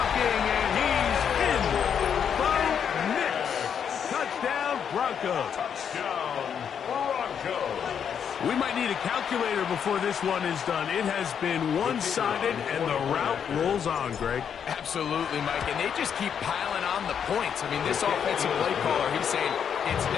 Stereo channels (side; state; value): right; quieter; 7.8 dB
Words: and he's in. Bo Nix. Touchdown, Broncos. Touchdown, Broncos. We might need a calculator before this one is done. It has been one-sided, and the route rolls on, Greg. Absolutely, Mike, and they just keep piling on the points. I mean, this offensive play caller, he's saying it's